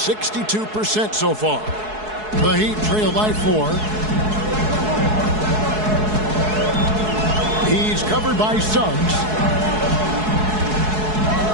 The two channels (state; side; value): late; left; 4.7 ms